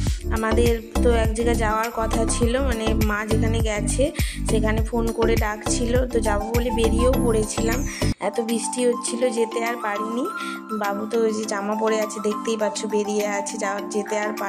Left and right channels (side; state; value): both; identical; correlation 1.00